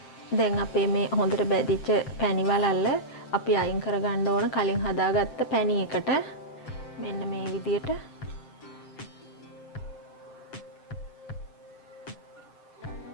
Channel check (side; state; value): right; late; 7.7 ms